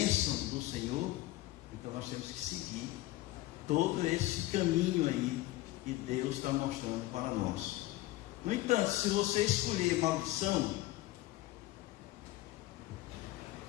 do Senhor, então nós temos que seguir todo esse caminho aí que Deus está mostrando para nós. No entanto, se você escolher maldição,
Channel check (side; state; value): right; quieter; 17.1 dB